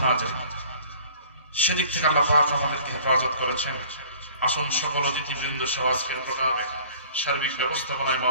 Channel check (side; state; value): both; inverted; correlation -0.50